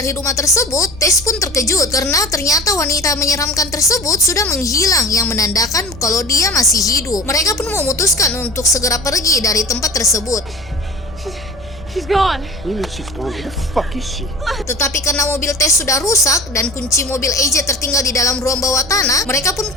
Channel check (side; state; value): both; normal; correlation 0.36